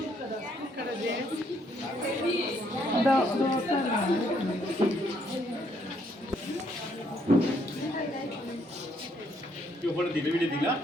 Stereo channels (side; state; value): both; normal; correlation 0.70